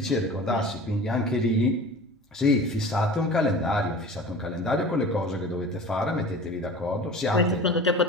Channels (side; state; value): both; normal; correlation 0.39